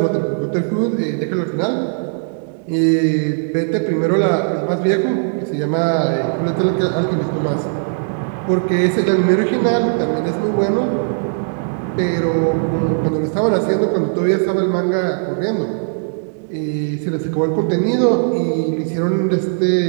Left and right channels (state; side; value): silent; left; digital silence